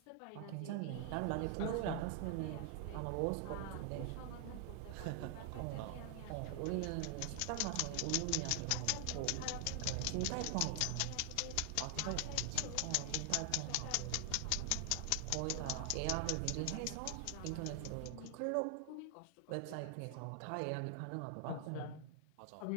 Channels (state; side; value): different; both; correlation 0.00